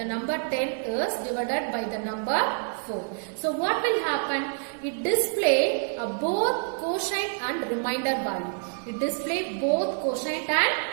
number 10 is divided by the number 4. So what will happen? It display both quotient and remainder value. It display both quotient and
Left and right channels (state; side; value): silent; left; 60 dB below the other